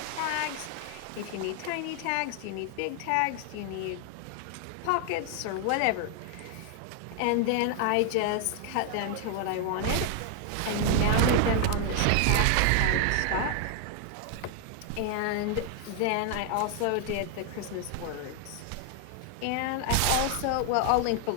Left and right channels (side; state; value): both; different; correlation 0.00